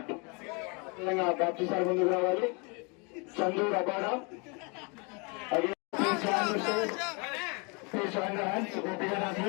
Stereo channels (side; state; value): right; quieter; 32.1 dB